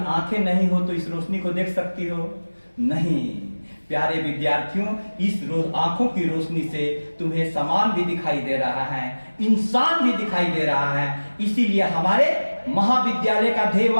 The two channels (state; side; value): inverted; both; correlation -1.00